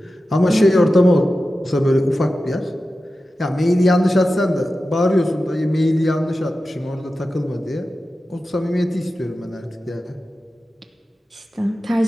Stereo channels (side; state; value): both; normal; correlation 0.93